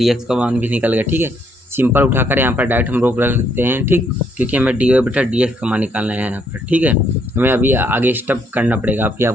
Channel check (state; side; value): normal; both; correlation 0.71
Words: एक्स का मान भी निकल गया, ठीक है। सिंपल उठाकर यहाँ पर डायरेक्ट हम रोक रख सकते हैं, ठीक, क्योंकि हमें डी वाई बटा डी एक्स का मान निकालना है यहाँ पर, ठीक है। हमें अभी आगे स्टेप करना पड़ेगा, अभी